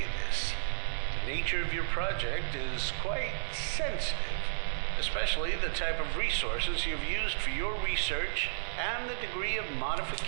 this? The nature of your project is quite sensitive, especially the type of resources you've used for your research and the degree of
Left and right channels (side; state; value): left; silent; 56 dB below the other